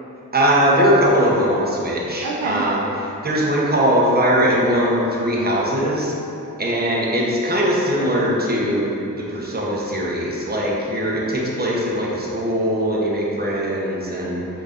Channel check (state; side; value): normal; both; correlation 0.16